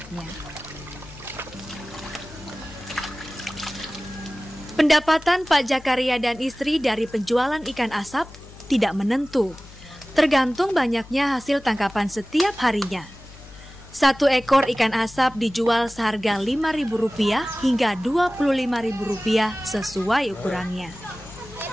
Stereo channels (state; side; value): noise; left; hum, 19 dB below the sound